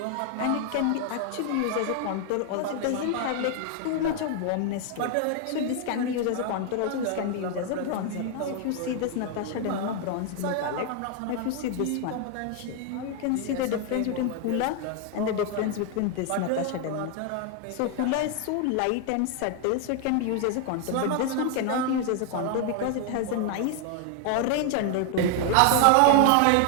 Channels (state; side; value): different; both; correlation 0.00